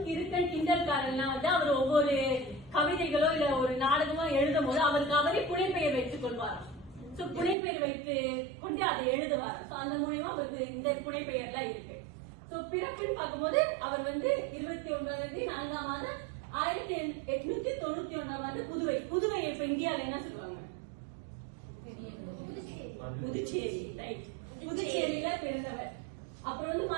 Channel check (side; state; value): left; drops out; at 7.6 s